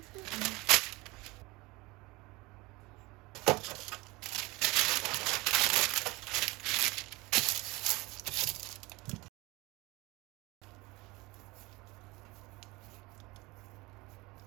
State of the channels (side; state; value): left; quieter; 23.0 dB